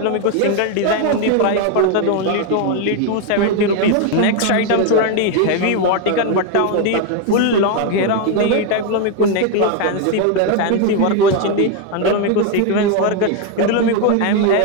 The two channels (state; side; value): different; both; correlation 0.01